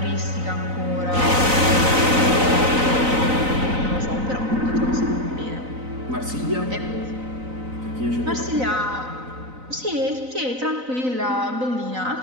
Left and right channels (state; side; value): late; left; 3.9 ms